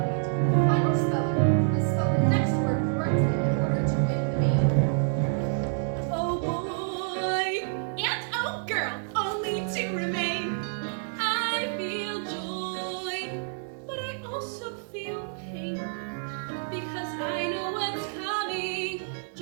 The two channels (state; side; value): silent; left; digital silence